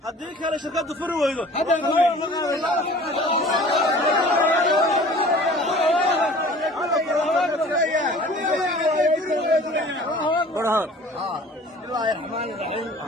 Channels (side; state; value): both; normal; correlation 0.46